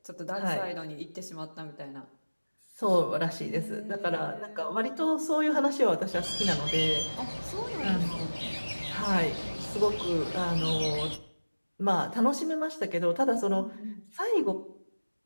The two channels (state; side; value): inverted; both; correlation -1.00